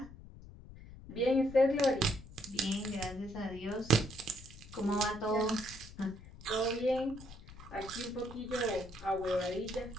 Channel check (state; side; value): noise; left; rumble, 16 dB below the sound